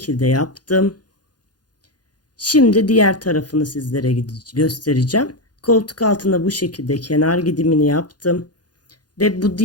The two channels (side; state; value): right; late; 0.69 ms